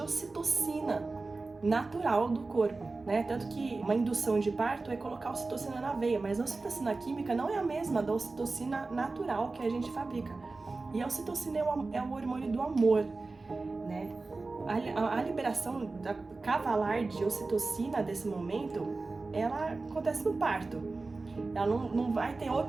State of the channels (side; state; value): left; quieter; 3.6 dB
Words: ocitocina natural do corpo, né? Tanto que uma indução de parto é colocar ocitocina na veia, mas a ocitocina química não é a mesma da ocitocina natural que a gente fabrica. E a ocitocina é o hormônio do amor, né? A liberação cavalar de ocitocina desse momento, ela acontece no parto. Ela não vai ter